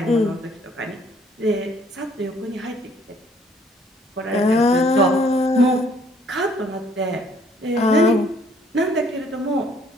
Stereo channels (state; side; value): normal; both; correlation 0.62